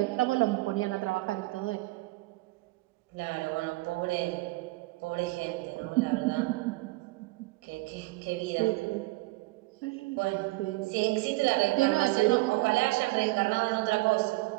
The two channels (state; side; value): quieter; left; 21.7 dB